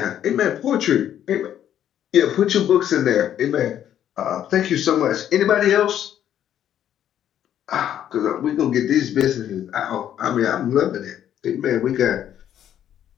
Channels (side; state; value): right; quieter; 10.5 dB